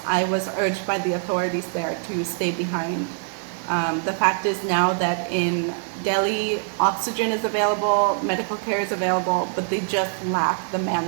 I was urged by the authorities there to stay behind. The fact is now that in Delhi, oxygen is available, medical care is available, but they just lack the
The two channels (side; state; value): left; silent; 58 dB below the other